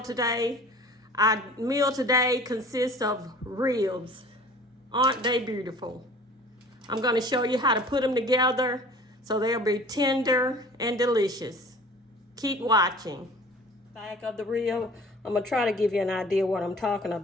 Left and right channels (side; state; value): both; normal; correlation 0.46